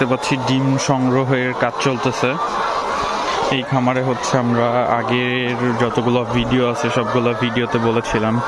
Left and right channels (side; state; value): both; identical; correlation 1.00